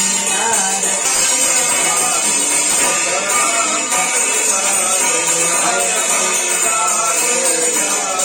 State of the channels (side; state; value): both; identical; correlation 1.00